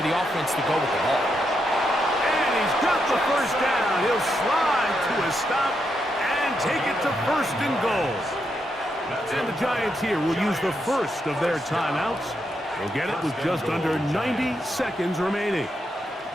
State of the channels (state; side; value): normal; both; correlation 0.82